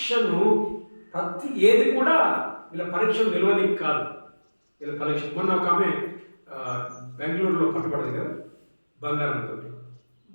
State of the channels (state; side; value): inverted; both; correlation -1.00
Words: ఏది కూడా వీళ్ళ పరీక్షను నిలవనికి కాదు. వీళ్ళ పరీక్ష మొన్న ఒక ఆమె బెంగళూరులో పట్టుబడదు కదా, బంగారంతో